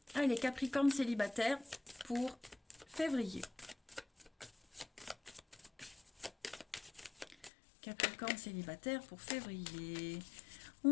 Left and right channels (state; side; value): drops out; right; at 7.5 s